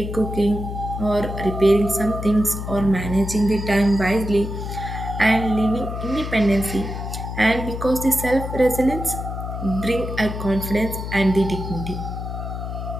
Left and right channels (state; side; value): noise; left; hum, 6 dB below the sound